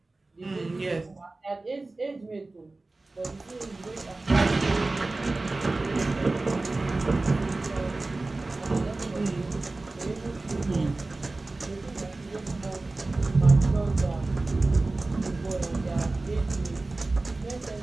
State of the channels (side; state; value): left; quieter; 3.2 dB